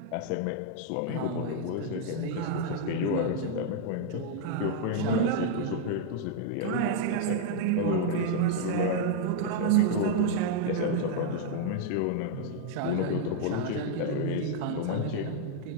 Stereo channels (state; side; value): different; both; correlation 0.00